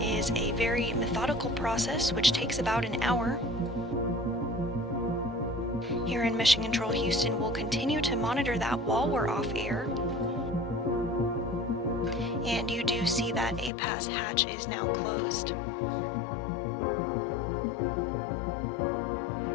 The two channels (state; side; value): drops out; right; at 13.7 s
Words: is a very methodical process which takes about an hour. here in Mission Control Houston will continue to monitor that while we're off air. And you do see that APAS hatch is now closed.